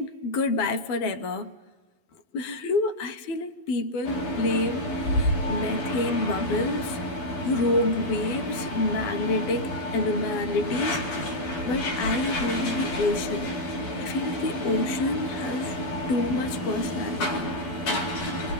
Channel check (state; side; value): late; right; 12 ms